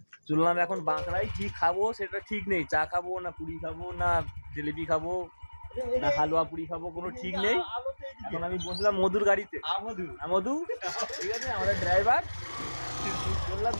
চললাম এখন বাঁকড়ায়। কি খাবো সেটা ঠিক নেই, চা খাবো না পুরি খাবো না জিলিপি খাবো না হালুয়া পুরি খাবো, কোনো ঠিক নেই। এখন আমি বসলাম মধুর গাড়িতে। মধু ঠিক আছে, আমাদের ড্রাইভার। বললাম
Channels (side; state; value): both; inverted; correlation -1.00